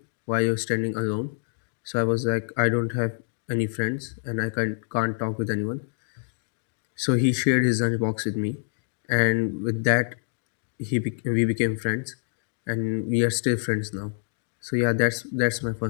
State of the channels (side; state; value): right; silent; digital silence